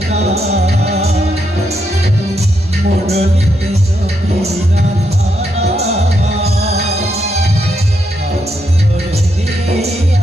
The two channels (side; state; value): both; normal; correlation 0.80